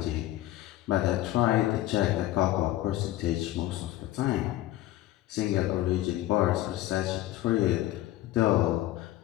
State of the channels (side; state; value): right; quieter; 15.2 dB